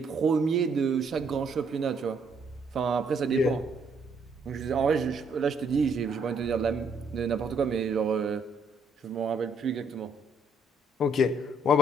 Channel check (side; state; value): both; normal; correlation 0.69